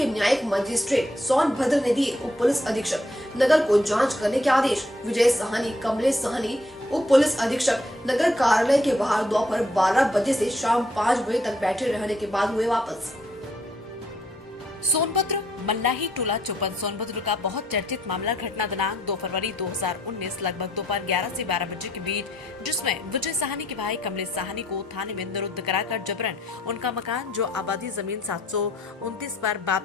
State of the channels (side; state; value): both; normal; correlation 0.70